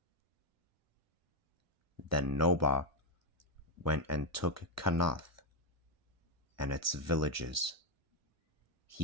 Then Nobah went and took Kanath and its villages.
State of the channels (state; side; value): normal; both; correlation 0.05